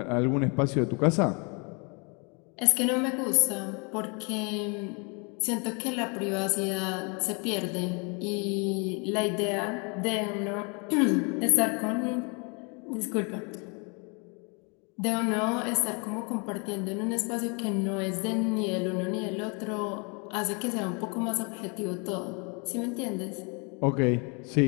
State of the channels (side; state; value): right; quieter; 33.0 dB